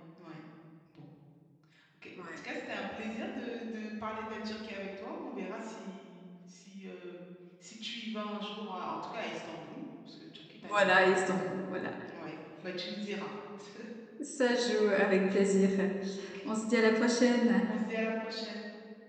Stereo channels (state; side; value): identical; both; correlation 1.00